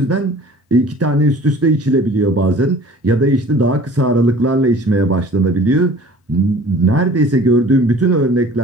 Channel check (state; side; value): normal; both; correlation 0.47